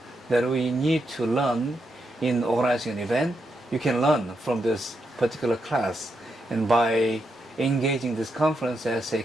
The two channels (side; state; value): both; normal; correlation 0.83